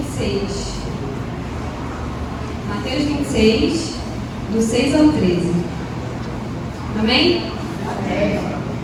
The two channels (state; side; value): identical; both; correlation 1.00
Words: Mateus 26, do 6 ao 13. Amém? Amém.